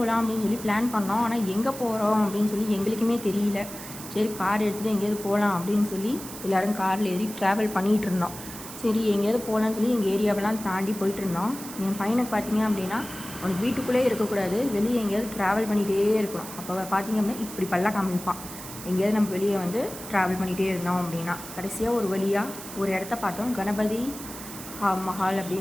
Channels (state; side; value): noise; right; hiss, 12 dB below the sound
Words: அப்படின்னு சொல்லி பிளான் பண்ணோம். ஆனால் எங்கே போகிறோம் அப்படின்னு சொல்லி எங்களுக்குமே தெரியல. சரி, கார் எடுத்துகிட்டு எங்கேயாவது போகலாம் அப்படின்னு சொல்லி எல்லோரும் காரில் ஏறி ட்ராவல் பண்ணிகிட்டு இருந்தோம். சரி, எங்கேயாவது போகலான்னு சொல்லி எங்கள் ஏரியாவெல்லாம் தாண்டி போயிட்டு இருந்தோம். என் பையனுக்கு பார்த்திங்க அப்படின்னா அவனுக்கு வீட்டுக்குள்ளே இருக்கக்கூடாது, வெளியே எங்கேயாவது ட்ராவல் பண்ணிகிட்டே இருக்கணும். அப்போ பார்த்திங்க அப்படின்னா இப்படி பல்ல காமிப்பான். எங்கேயாவது நம்ம வெளியே வந்து ட்ராவல் பண்ணிகிட்டே இருந்தோம் அப்படின்னா கடைசியாக ஒரு வழியாக ஒரு இடத்த பார்த்தோம், கணபதி மஹால்